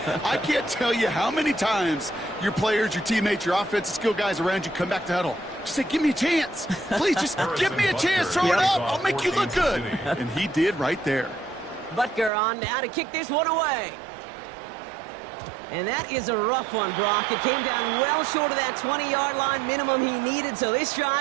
I can't tell you how many times your players, your teammates, your offensive skill guys around you come back to huddle. Just say, give me a chance. Please, just give me a chance. Throw it up. I'll make you look good. And he did right there. Butker on now to kick this one away. And that is a rough one, Brock. It came down well short of that 20-yard line minimum he needed, so this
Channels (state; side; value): drops out; left; at 12.3 s